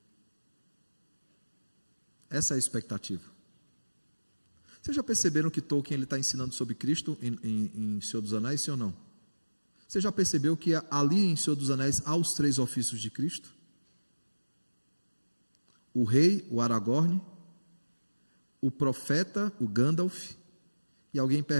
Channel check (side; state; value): both; inverted; correlation -1.00